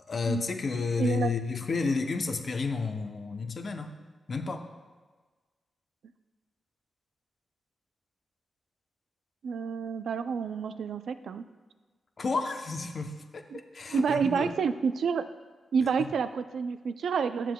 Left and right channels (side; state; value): both; normal; correlation 0.80